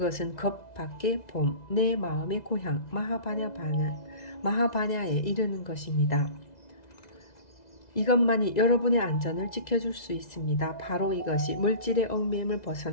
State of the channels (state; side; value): late; right; 2.0 ms